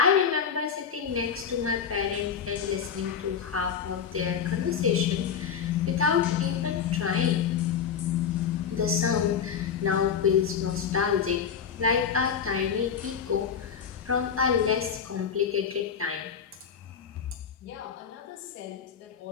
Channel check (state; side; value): quieter; right; 7.2 dB